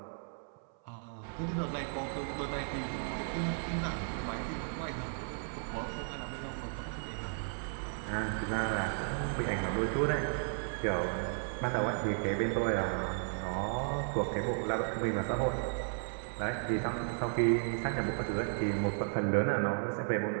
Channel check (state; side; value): silent; left; 55 dB below the other